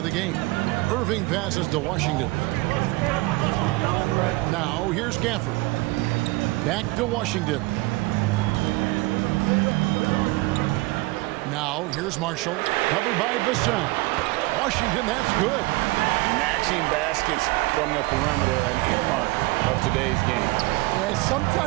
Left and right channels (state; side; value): quieter; left; 22.2 dB